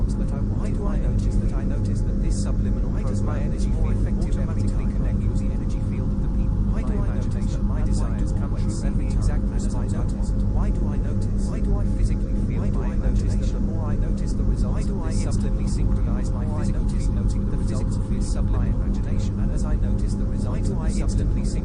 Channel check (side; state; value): both; identical; correlation 1.00